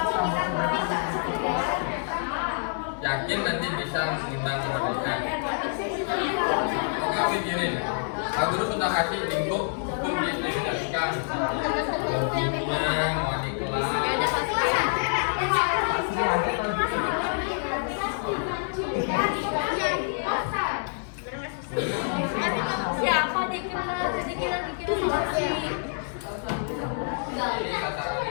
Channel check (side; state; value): right; silent; digital silence